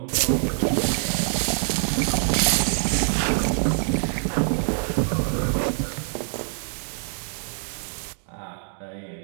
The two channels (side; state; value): left; silent; digital silence